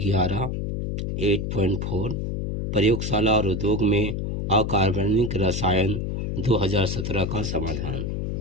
8.4 प्रयोगशाला और उद्योग में अकार्बनिक रसायन 2017 का समाधान,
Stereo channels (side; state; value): left; noise; hum, 2 dB below the sound